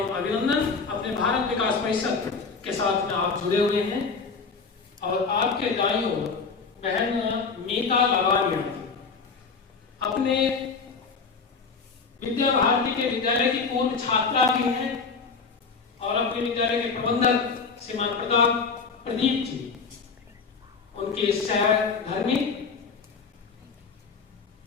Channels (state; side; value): quieter; right; 5.0 dB